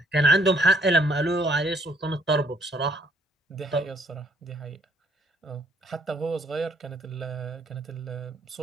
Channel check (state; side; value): normal; both; correlation 0.65